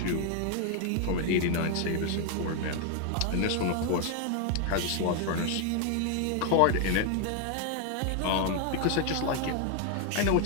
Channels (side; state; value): both; different; correlation 0.00